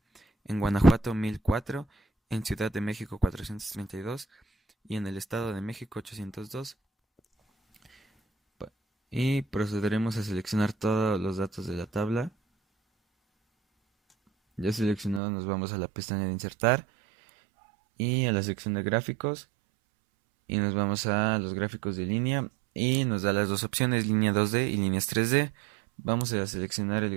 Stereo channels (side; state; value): left; drops out; at 15.2 s